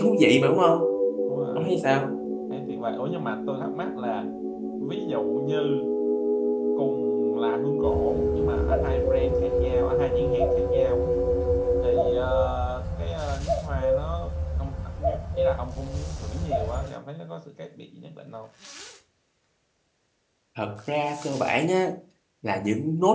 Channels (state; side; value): identical; both; correlation 1.00